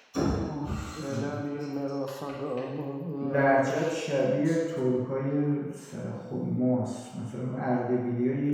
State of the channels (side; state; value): both; identical; correlation 1.00